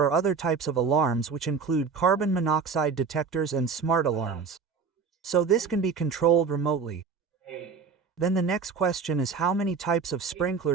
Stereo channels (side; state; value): left; quieter; 5.5 dB